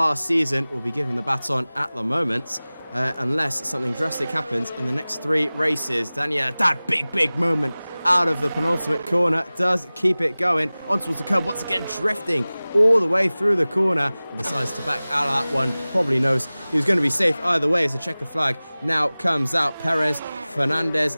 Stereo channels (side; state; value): both; inverted; correlation -0.99